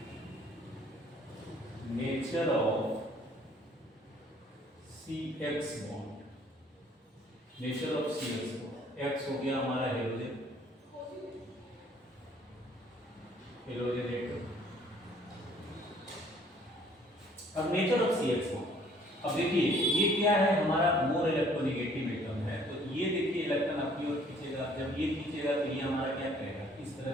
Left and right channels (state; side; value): normal; both; correlation 0.59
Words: nature of C X bond nature of C X bond X हो गया हमारा हेलोजन एटम। अब nature of C X bond, अब देखिए ये क्या है, हमारा मोर इलेक्ट्रोनेगेटिव एटम है। तो ये देखिए इलेक्ट्रॉन अपनी ओर खींचेगा, जब ये खींचेगा तो ये हमारा क्या करेगा, इस तरह